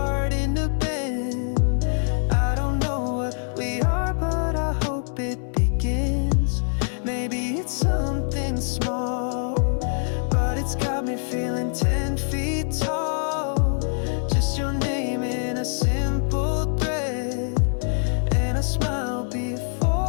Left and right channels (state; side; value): silent; right; digital silence